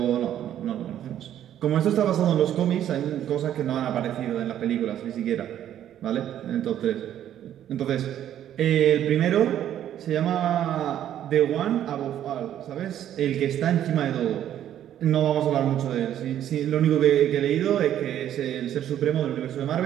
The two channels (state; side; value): quieter; left; 11.0 dB